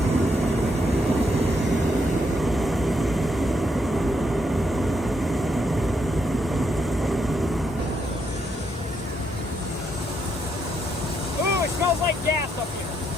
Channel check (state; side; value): normal; both; correlation 0.77